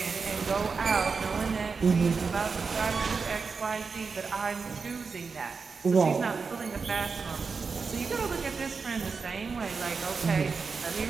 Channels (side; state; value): left; quieter; 5.0 dB